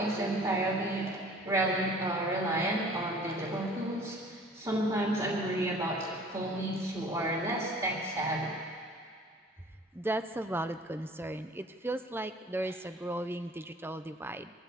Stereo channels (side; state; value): both; normal; correlation 0.49